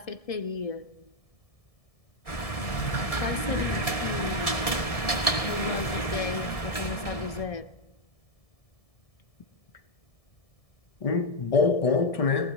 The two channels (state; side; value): late; right; 1.7 ms